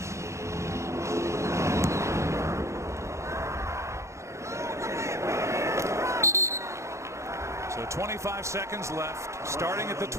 So 25 seconds left, starting at the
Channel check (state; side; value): late; left; 0.14 ms